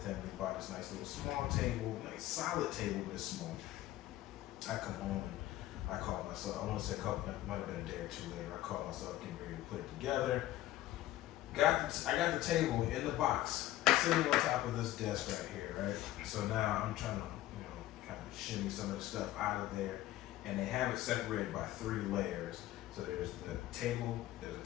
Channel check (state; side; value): quieter; right; 15.1 dB